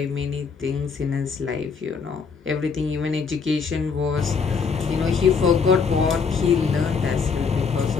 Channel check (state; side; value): quieter; right; 5.5 dB